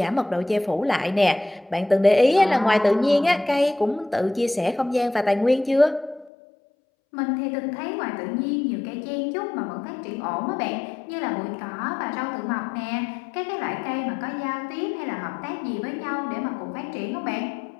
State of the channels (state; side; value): drops out; right; at 6.3 s